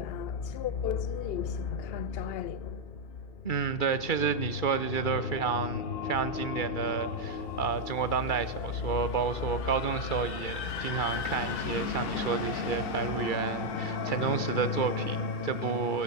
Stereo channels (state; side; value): late; right; 2.3 ms